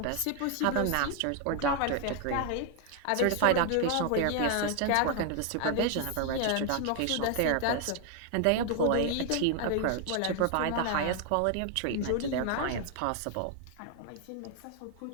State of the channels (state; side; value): different; both; correlation 0.00